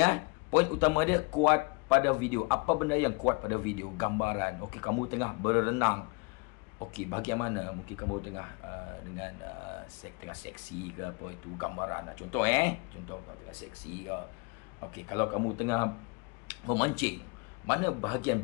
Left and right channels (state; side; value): quieter; right; 30.2 dB